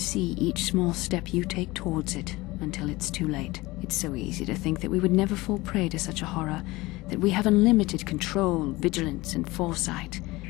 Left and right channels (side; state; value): right; quieter; 20.7 dB